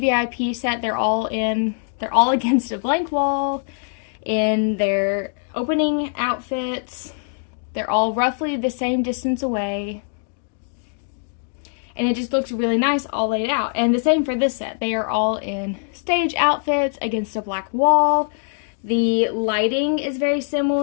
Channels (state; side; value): silent; right; digital silence